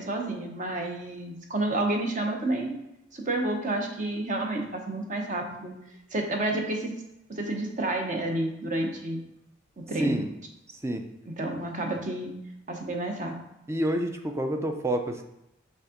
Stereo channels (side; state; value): both; normal; correlation 0.48